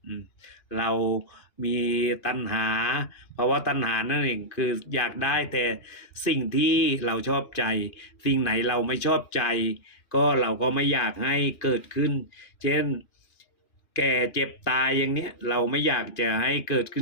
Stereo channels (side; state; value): right; late; 2.9 ms